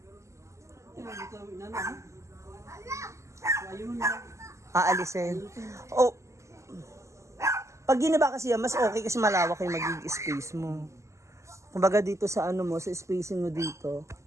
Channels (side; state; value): left; late; 0.14 ms